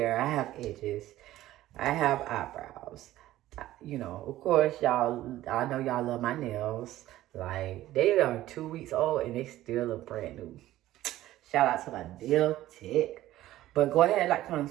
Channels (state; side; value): quieter; left; 14.8 dB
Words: I have edges, I have eyebrows. You know, of course, y'all, I know y'all love my nails. Like, they are 2 weeks old and they still look brand new. Shout out to my nail tech. But go ahead, like, comment,